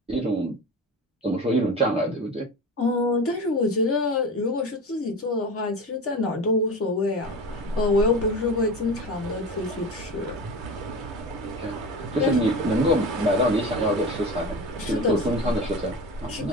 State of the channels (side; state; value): both; normal; correlation 0.30